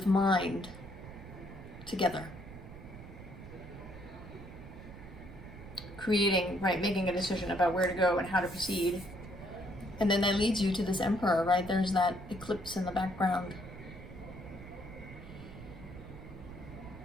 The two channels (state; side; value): noise; right; rumble, 14 dB below the sound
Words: mind together. Creating, right, making a decision about where to go and how to proceed. And then that leads you to this Emperor, right? There's that eclipse in the background.